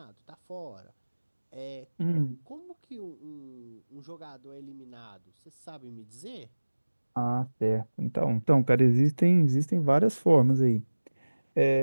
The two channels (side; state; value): both; inverted; correlation -1.00